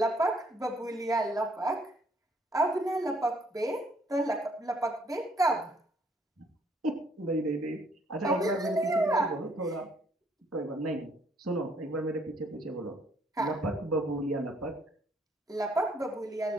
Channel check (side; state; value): both; normal; correlation 0.66